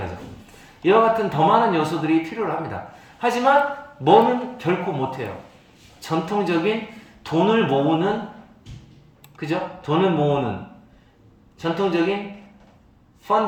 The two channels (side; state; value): both; identical; correlation 1.00